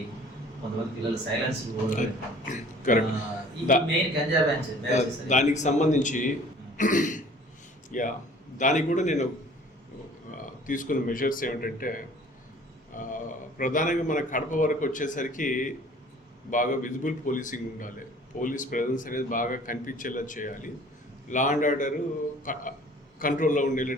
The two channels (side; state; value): both; normal; correlation 0.51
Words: కొంతమంది పిల్లలు సైలెన్స్ మెయిన్ గంజా బ్యాచ్, దానికి సంబంధించి దానికి కూడా నేను తీసుకున్న మెజర్స్ ఏమిటంటే, ప్రధానంగా మన కడప వరకు వచ్చేసరికి బాగా విజిబుల్ పోలీసింగ్ ఉండాలి. పోలీస్ ప్రెజెన్స్ అనేది బాగా కనిపించేలా చేయాలి. లా అండ్ ఆర్డర్ కంట్రోల్లో